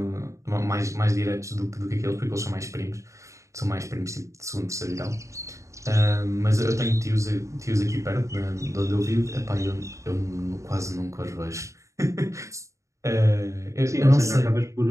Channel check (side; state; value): left; late; 0.15 ms